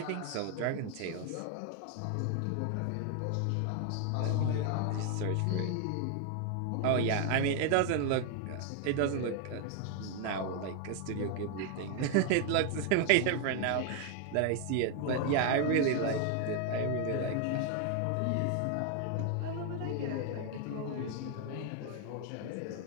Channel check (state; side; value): different; both; correlation 0.00